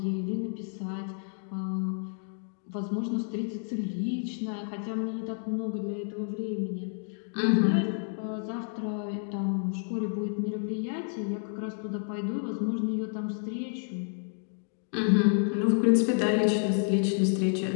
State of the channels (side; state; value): right; silent; 58 dB below the other